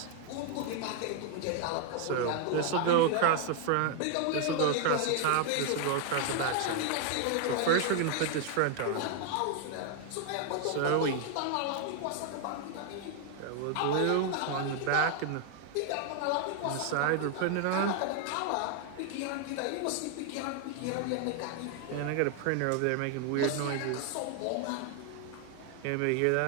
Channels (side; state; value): both; different; correlation 0.00